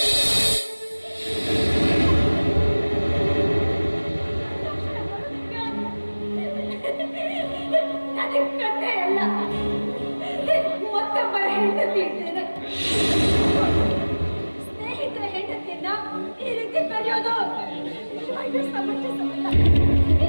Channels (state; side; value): inverted; both; correlation -1.00